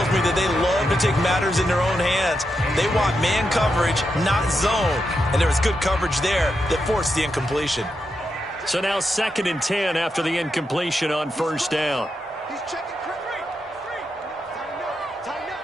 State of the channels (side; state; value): both; normal; correlation 0.85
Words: me that they love to take matters in their own hands. They want man coverage, not zone. And there was good coverage there that forced the incompletion. So now 2nd and 10 after the incompletion on 1st down. He's checking.